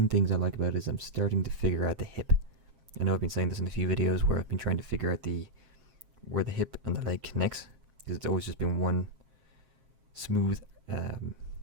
things I like about it is I'm starting to figure out the hip. I know I've been saying this in a few videos where I've been trying to figure out where the hip and the leg connects, because it's always just been one smooth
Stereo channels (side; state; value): left; late; 7.5 ms